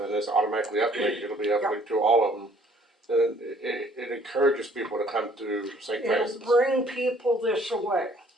and it's automatically uplinked, it'll be uplinked to all of them. Then it encourages people to come to St. It'll Francis. bring people this way.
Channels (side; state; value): both; normal; correlation 0.59